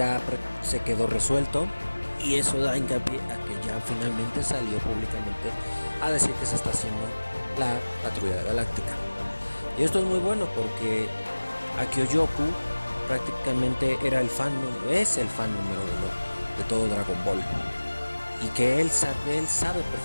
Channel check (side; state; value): both; inverted; correlation -1.00